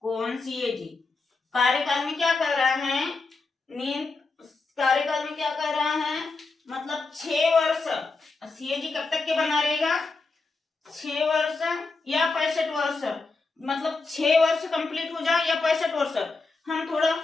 कौन? CAG। कार्यकाल में क्या कर रहा है? कार्यकाल में क्या कर रहा है? मतलब 6 वर्ष। CAG कब तक के बना रहेगा? 6 वर्ष या 65 वर्ष, मतलब 6 वर्ष कंप्लीट हो जाए या 65 वर्ष। हम थोड़ा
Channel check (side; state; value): right; quieter; 3.9 dB